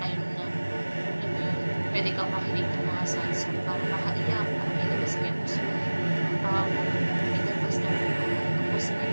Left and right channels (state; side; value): inverted; both; correlation -1.00